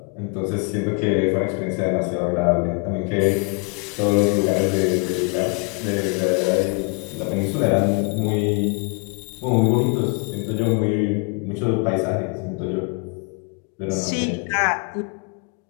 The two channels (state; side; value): quieter; right; 32.5 dB